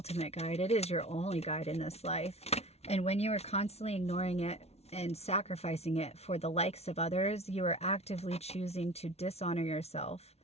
guide. It is your only guide in this life. And when you are constantly ignoring it and sacrificing it for the likes of others, you are actively choosing to dishonor yourself.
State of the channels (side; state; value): right; late; 0.31 ms